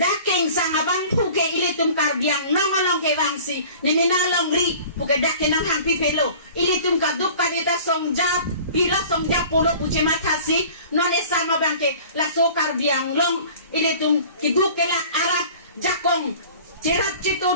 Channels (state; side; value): inverted; both; correlation -0.45